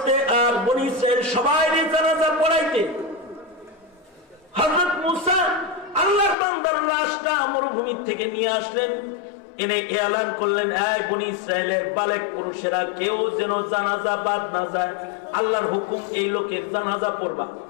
আর বনি ইসরাইল সবাই জানাজা পড়াইতে। হযরত মুসা আল্লাহর বান্দার লাশটা মরুভূমি থেকে নিয়ে আসলেন, এনে এলান করলেন, এই বনি ইসরাইলের বালেক পুরুষেরা কেউ যেন জানাজা বাদ না যায়, আল্লাহর হুকুম এই লোকের জানাজা পড়বা।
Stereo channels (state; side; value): drops out; right; at 6.4 s